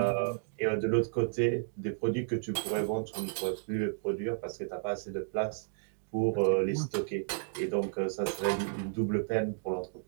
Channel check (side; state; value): left; silent; digital silence